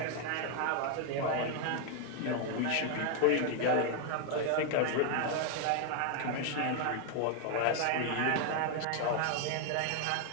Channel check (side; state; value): both; different; correlation 0.01